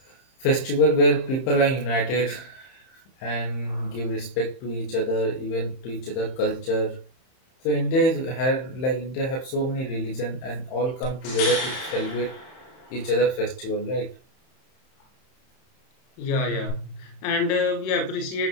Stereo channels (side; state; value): right; late; 31 ms